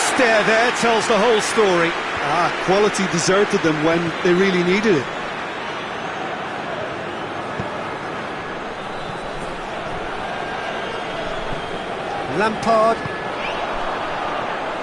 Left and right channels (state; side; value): identical; both; correlation 1.00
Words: there tells the whole story. Quality deserted them when they really needed it. Lampard.